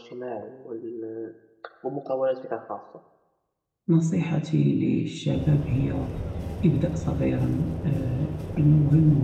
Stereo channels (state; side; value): identical; both; correlation 1.00